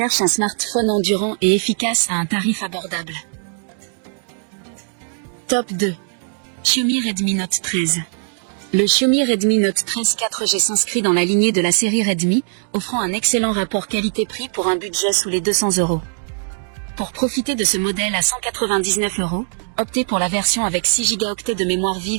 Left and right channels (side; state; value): left; silent; digital silence